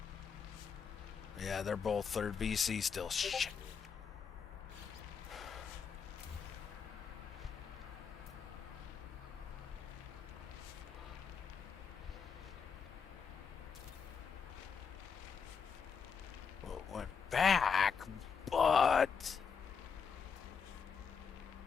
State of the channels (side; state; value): right; quieter; 6.4 dB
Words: Yeah, they're both third BC still. Shit. Well, it went back, but...